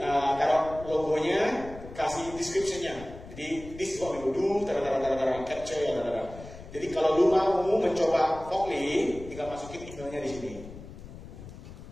taruh logonya, kasih description-nya. Jadi this is what we will do, capture ya, Jadi kalau lu mau mencoba Fogly, tinggal masukin emailnya di sini.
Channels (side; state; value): left; noise; rumble, 15 dB below the sound